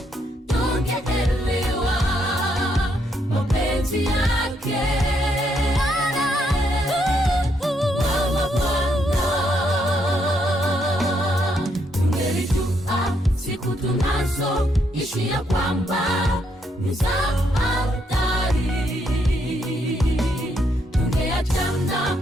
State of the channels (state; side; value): normal; both; correlation 0.75